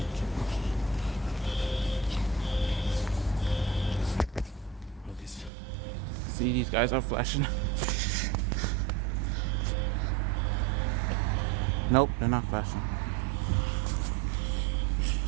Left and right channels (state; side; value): drops out; left; at 5.5 s